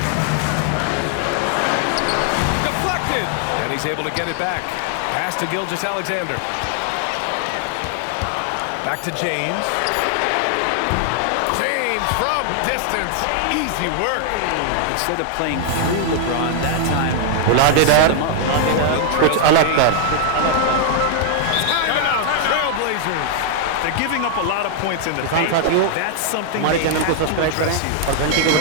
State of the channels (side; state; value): both; different; correlation 0.00